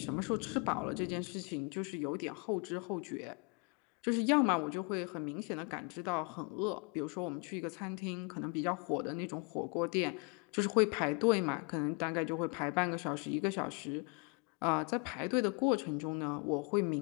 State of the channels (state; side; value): quieter; right; 32.0 dB